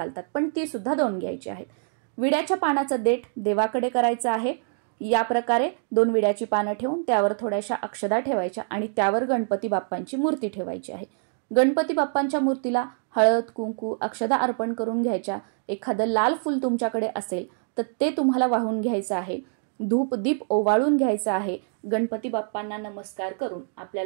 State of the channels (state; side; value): silent; left; 61 dB below the other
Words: पण ती सुद्धा 2 घ्यायची आहेत। विड्याच्या पानाचं देठ देवाकडे करायचं आहे। या प्रकारे 2 विड्याची पानं ठेवून त्यावर थोड्याशा अक्षदा ठेवायच्या आणि त्यावर गणपती बाप्पांची मूर्ती ठेवायची आहे। गणपती बाप्पांच्या मूर्तीला हळद, कुंकू, अक्षदा अर्पण करून घ्यायच्या। एखादं लाल फूल तुमच्याकडे असेल तर ते तुम्हाला वाहून घ्यायचं आहे। धूप दीप ओवाळून घ्यायचा आहे. गणपती बाप्पांना नमस्कार करून